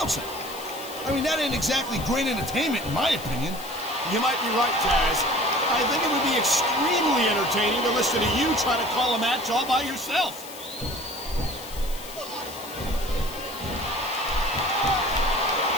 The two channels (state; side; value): noise; left; hiss, 14 dB below the sound